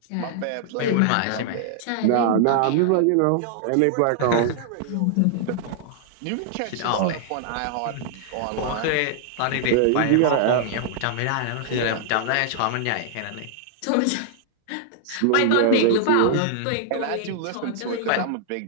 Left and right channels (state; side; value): different; both; correlation -0.01